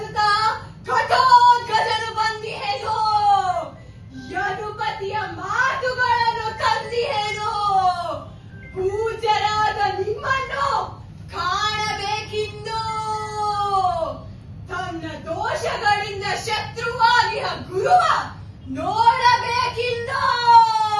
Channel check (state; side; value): identical; both; correlation 1.00